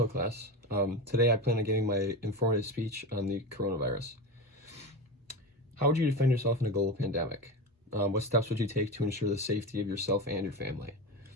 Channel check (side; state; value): both; normal; correlation 0.23